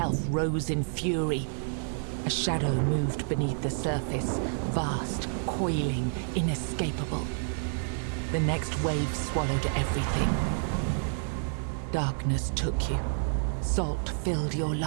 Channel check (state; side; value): silent; left; digital silence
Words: rose in fury. A shadow moved beneath the surface, vast, coiling, inescapable. The next wave swallowed everything. Darkness took you. Salt filled your